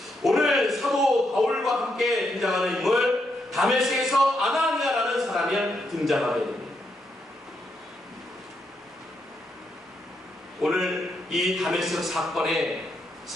오늘 사도 바울과 함께 등장하는 인물 다메섹에서 아나니아라는 사람이 등장하게 됩니다. 오늘 이 다메섹 사건의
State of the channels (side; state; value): both; normal; correlation 0.80